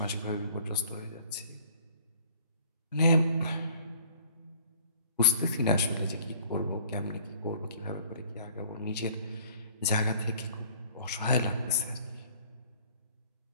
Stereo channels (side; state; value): both; inverted; correlation -0.54